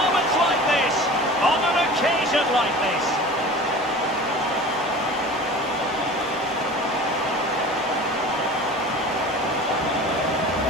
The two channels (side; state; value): both; normal; correlation 0.38